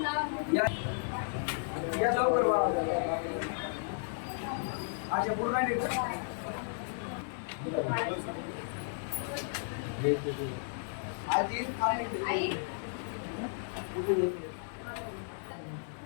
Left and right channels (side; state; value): right; silent; digital silence